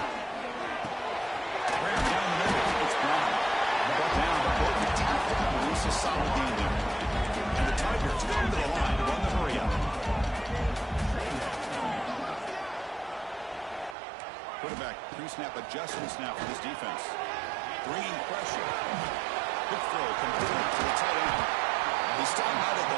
Graham down the middle. It's Brown. Brought down, but both the tackle and release a solid gain there. And the Tigers come to the line to run the hurry up. Quarterback pre-snap adjustments now for this defense. Bringing pressure. Quick throw complete to the tight end. They start out at the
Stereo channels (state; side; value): drops out; left; at 14.0 s